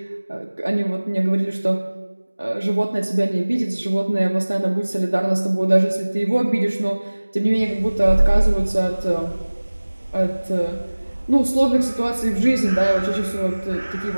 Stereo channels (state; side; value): inverted; both; correlation -1.00